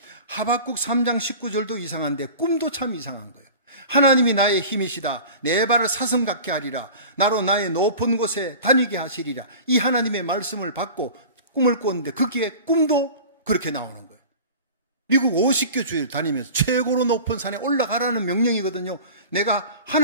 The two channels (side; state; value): both; inverted; correlation -0.38